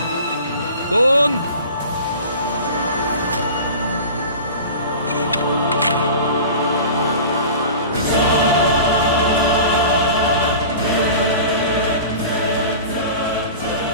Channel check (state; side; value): inverted; both; correlation -0.37